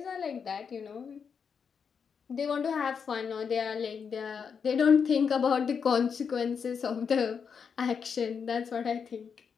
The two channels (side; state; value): right; quieter; 6.4 dB